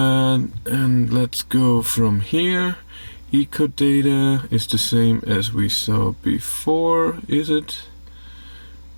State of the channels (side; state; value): both; inverted; correlation -1.00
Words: let's go from here. Eco data is the same as we saw before, is it?